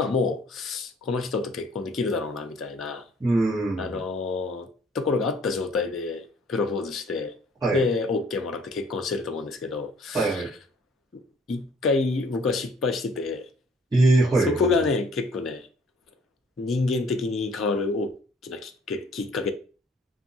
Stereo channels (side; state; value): both; normal; correlation 0.59